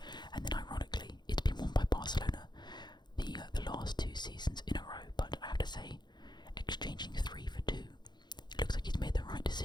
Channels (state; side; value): late; right; 0.21 ms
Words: and then ironically, it's been won by Barcelona the last 2 seasons in a row. But I have to say, exchanging 3 for 2, it looks like he's made the right